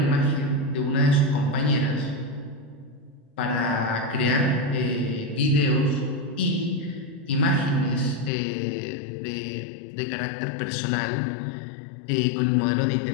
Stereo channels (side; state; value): right; drops out; at 8.3 s